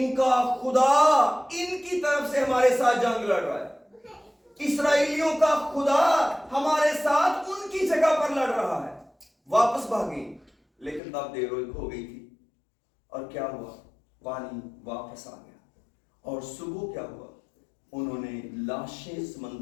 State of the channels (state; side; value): drops out; right; at 11.0 s